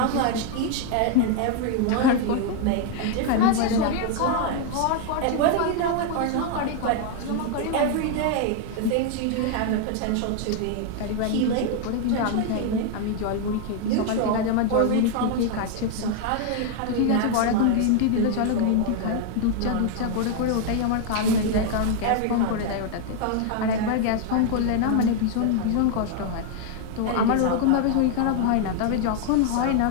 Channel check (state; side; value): different; both; correlation 0.00